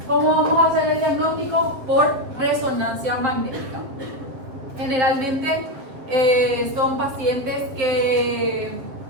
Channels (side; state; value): left; late; 7.7 ms